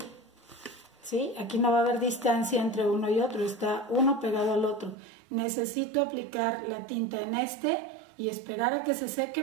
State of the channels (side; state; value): left; drops out; at 5.0 s